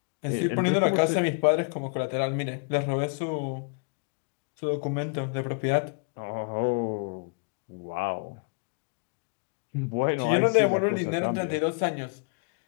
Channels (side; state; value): right; quieter; 37.9 dB